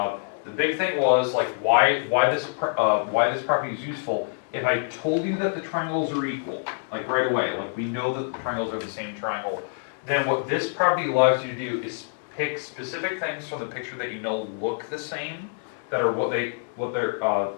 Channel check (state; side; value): silent; right; 61 dB below the other